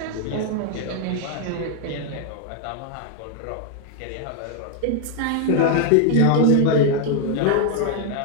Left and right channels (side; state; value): both; different; correlation 0.00